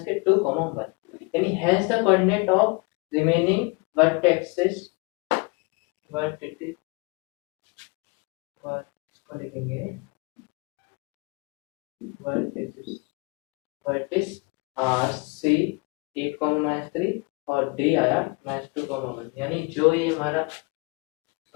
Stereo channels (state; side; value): quieter; right; 28.4 dB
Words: 1, यानी hence the coordinate of remaining vertexes vertices are C 8, -3 और डी आया -2, 1, यानी जो ये हमारा